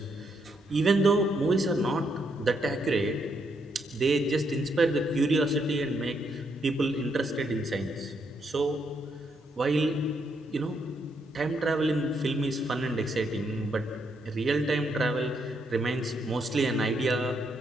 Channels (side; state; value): both; normal; correlation 0.76